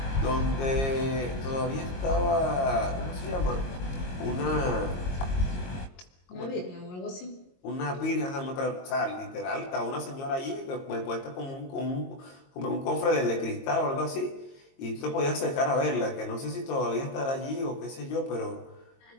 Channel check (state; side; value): late; right; 22 ms